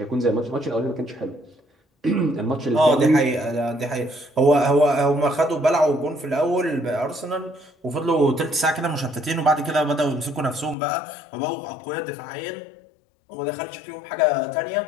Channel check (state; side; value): drops out; right; at 10.8 s